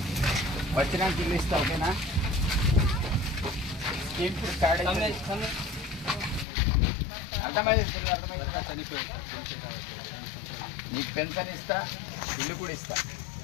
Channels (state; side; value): drops out; right; at 6.5 s